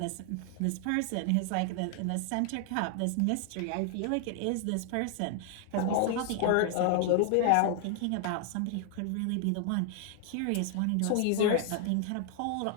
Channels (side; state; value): both; different; correlation 0.00